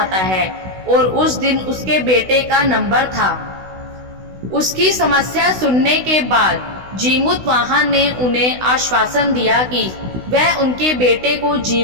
है और उस दिन उसके बेटे का नंबर था। उसकी समस्या सुनने के बाद जीमूत वाहन ने उन्हें आश्वासन दिया कि वह उनके बेटे को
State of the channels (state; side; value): late; left; 16 ms